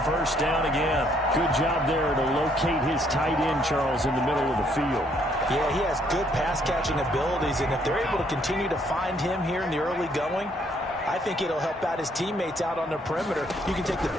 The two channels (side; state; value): both; normal; correlation 0.68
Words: first down again. Good job there to locate his tight end, Charles, in the middle of the field. Yeah, he has good pass-catching abilities, and if they're able to continue to find him here in the early going, I think it'll help out his teammates out on the perimeter. You can take the